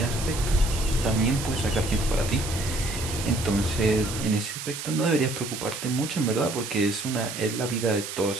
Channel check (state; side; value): noise; right; hiss, 7 dB below the sound